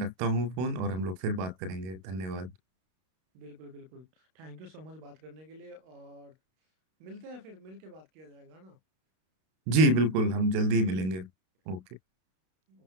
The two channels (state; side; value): late; left; 32 ms